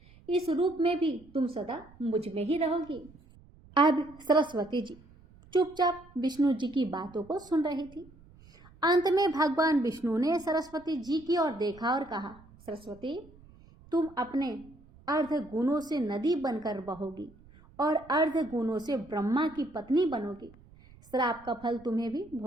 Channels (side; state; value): right; noise; rumble, 24 dB below the sound